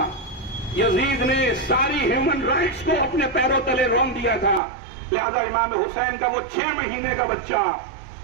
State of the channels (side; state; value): left; drops out; at 4.6 s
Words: یزید نے ساری ہیومن رائٹس کو اپنے پیروں تلے رون دیا تھا. لہذا امام حسین کا وہ 6 مہینے کا بچہ